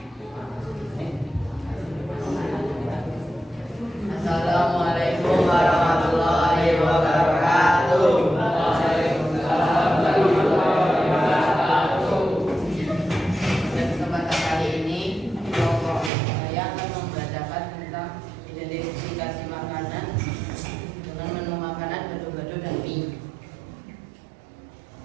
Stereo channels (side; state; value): left; drops out; at 16.1 s